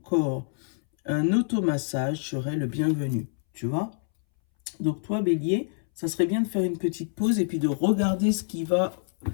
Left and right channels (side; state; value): right; silent; 61 dB below the other